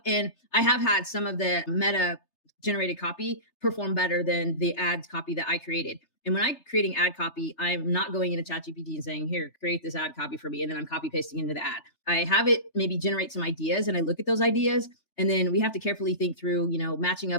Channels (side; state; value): right; late; 3.3 ms